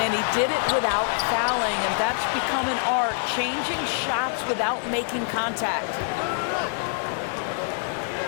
he did it without fouling, and that's become an art, changing shots without making contact.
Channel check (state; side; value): silent; right; digital silence